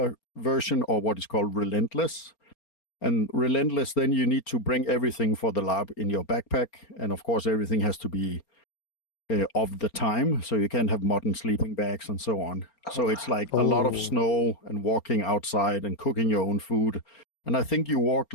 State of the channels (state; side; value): late; right; 4.3 ms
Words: version or what is called Relentless. And Relentless, then you need to bring everything for the LARP in your backpack. And of course, everything has to be of the time. So you can't have modern sleeping bags and so on. So it's like a lot of snow and walking outside and cooking your own food. And I think you walked